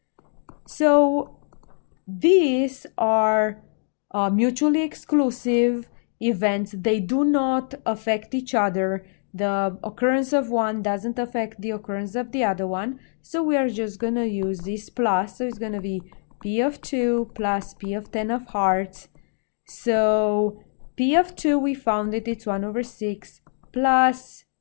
So these are mutually exclusive events. They do not affect each other. The occurrence of one doesn't affect the occurrence of the other one. So we are just gonna use this plus. So it's gonna be P of 2 plus P of 10 of hearts. So P of 2, we found it, it's 1 over 6 plus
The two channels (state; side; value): silent; right; digital silence